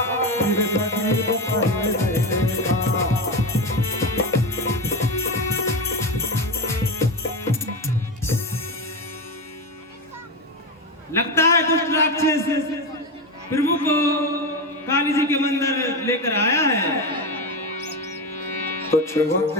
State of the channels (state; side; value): normal; both; correlation 0.17